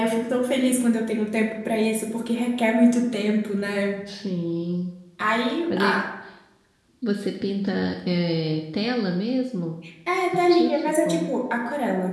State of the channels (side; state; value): both; identical; correlation 1.00